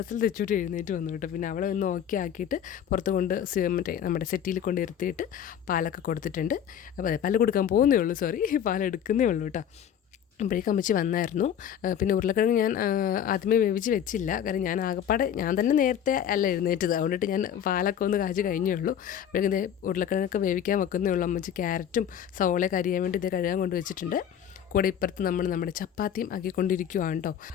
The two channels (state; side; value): quieter; right; 9.3 dB